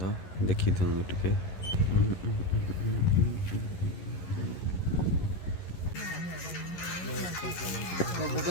देखी दिखाँ टे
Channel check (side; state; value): right; late; 11 ms